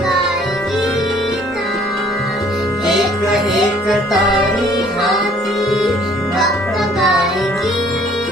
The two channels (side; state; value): both; normal; correlation 0.58